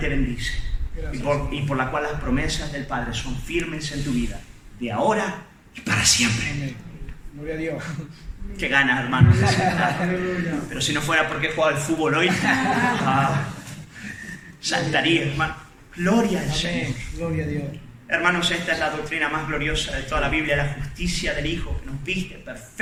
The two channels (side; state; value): both; identical; correlation 1.00